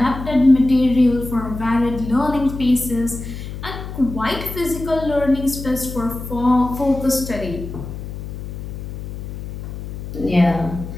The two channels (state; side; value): noise; left; hum, 9 dB below the sound